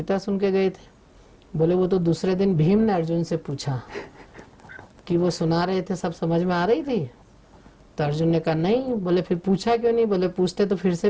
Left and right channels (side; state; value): both; identical; correlation 1.00